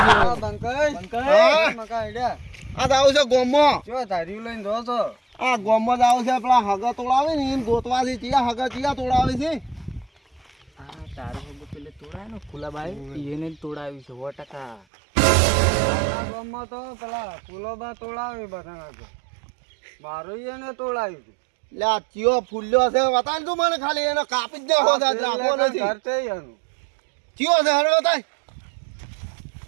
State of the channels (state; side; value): drops out; left; at 14.9 s